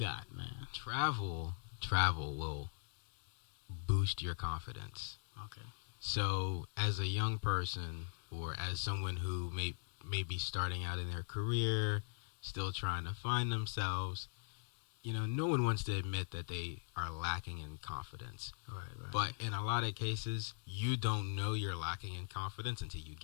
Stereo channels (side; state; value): right; quieter; 39.0 dB